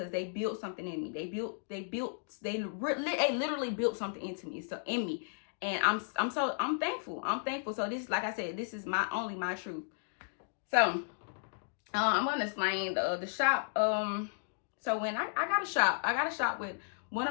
they built something in me. They literally built something into me. So in me, And I'm thankful. I'm thankful. So this, like I said, this is my truth. So I'm gonna explain the shop. So when I got a shop with one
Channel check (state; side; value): silent; right; digital silence